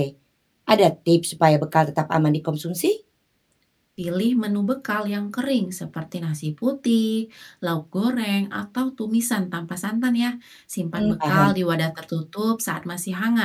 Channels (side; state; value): both; identical; correlation 1.00